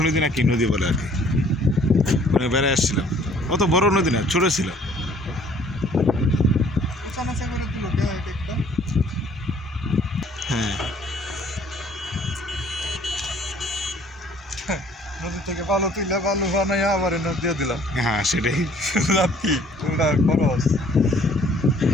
নদী না কি নদী বলে আর কি, মানে বেড়ায় আসছিলাম। অত বড় নদী না, ছোটো ছিল। হ্যাঁ, নদী থেকে বালু তুলে বালু বানাই আবার নদী দিয়ে দিলাম। হ্যাঁ সেটাই। লাভ কি তোমরা খরচ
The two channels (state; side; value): normal; both; correlation 0.57